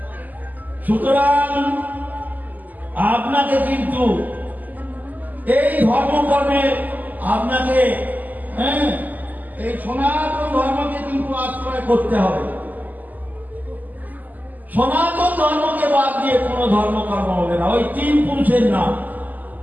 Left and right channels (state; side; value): late; left; 0.082 ms